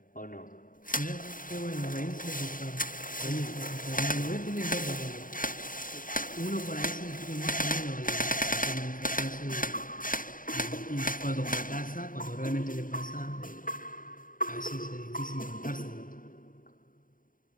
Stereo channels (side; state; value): right; late; 0.40 ms